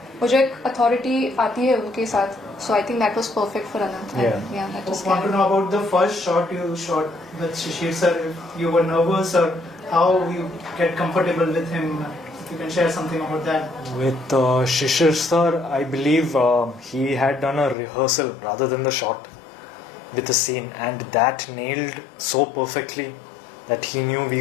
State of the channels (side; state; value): right; drops out; at 17.8 s